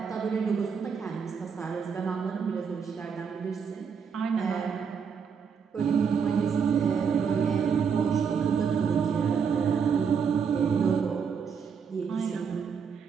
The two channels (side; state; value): left; quieter; 6.5 dB